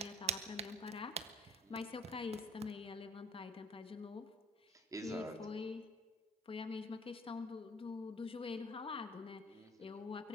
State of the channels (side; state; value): both; normal; correlation 0.55